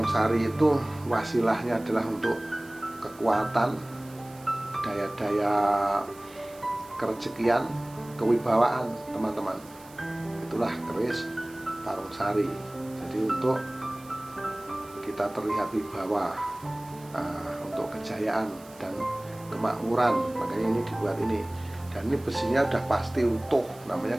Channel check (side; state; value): right; noise; hiss, 23 dB below the sound